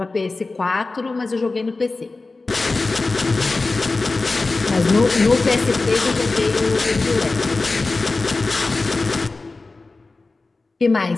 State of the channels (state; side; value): quieter; right; 3.6 dB